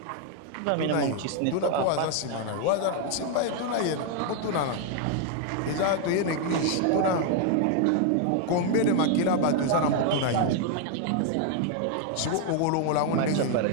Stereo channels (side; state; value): both; different; correlation 0.00